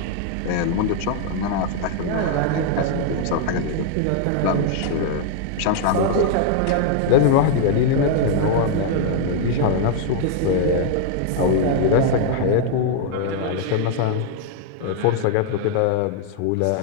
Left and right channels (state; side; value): different; both; correlation 0.00